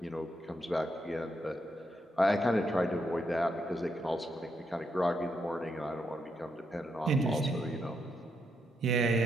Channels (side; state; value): both; normal; correlation 0.80